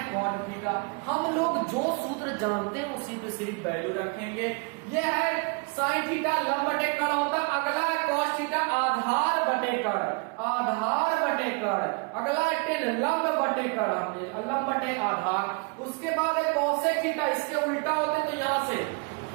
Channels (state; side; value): quieter; left; 32.1 dB